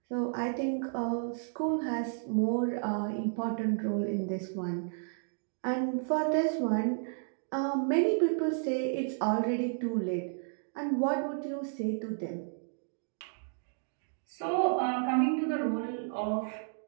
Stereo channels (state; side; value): silent; left; digital silence